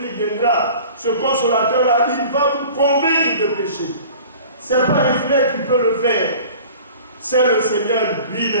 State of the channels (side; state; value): both; inverted; correlation -0.44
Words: viendra, ce consolateur-là, il va vous convaincre de péché. Ce n'est pas un frère qui peut le faire. C'est le Seigneur